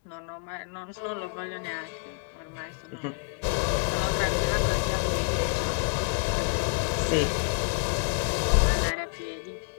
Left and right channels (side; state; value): right; quieter; 39.5 dB